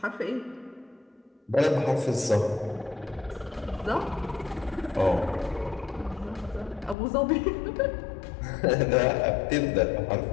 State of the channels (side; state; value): right; drops out; at 7.0 s